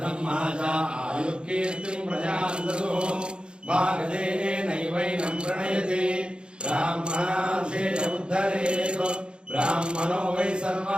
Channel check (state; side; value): late; left; 0.053 ms